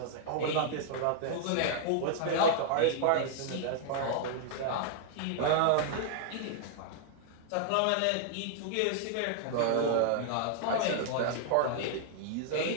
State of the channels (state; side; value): different; both; correlation -0.01